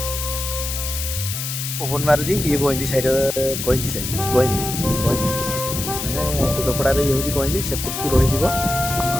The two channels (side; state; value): left; noise; hiss, 5 dB below the sound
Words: पवन मारुची ये गईंदी साइड गईंदी साइड गईंदी गईंदी माने टिकरपड़ार ये हूँ गईंदी सेपटू रही